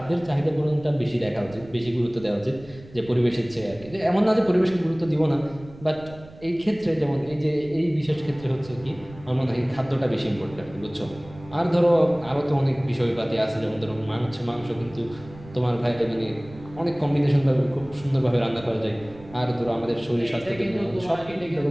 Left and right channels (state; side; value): noise; right; rumble, 19 dB below the sound